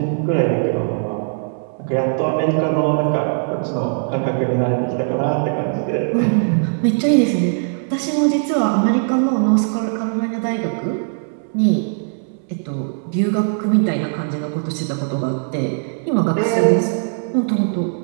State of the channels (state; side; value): silent; left; 64 dB below the other